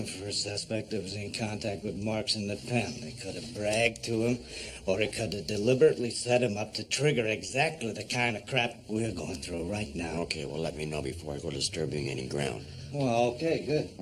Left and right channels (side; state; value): both; identical; correlation 1.00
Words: for a suspect that was in contact with Marx in the pen. They could have bragged to him, or they could have deliberately set him up to trigger exactly the kind of crap we're going through right now. Okay, well, let me know before I go disturbing any ground. Well, okay, good.